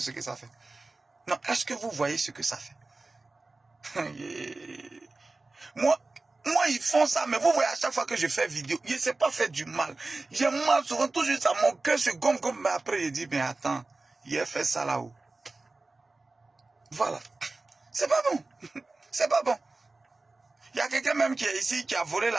que ça fait? Non, est-ce que vous voyez ce que ça fait? Moi, ils font ça, mais vous voyez à chaque fois que je fais vidéo, je ne sais pas faire du mal. J'ai mal souvent, toujours ça, mon cœur se gonfle, mais après je dis, mais attends, il a fait ça là-haut. Voilà. C'est pas bon. C'est pas bon. Il y a quelqu'un même qui est ici, qui a volé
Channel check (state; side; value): quieter; left; 3.3 dB